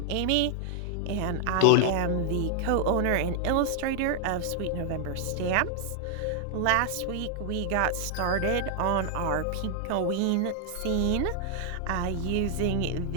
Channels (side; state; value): both; different; correlation 0.00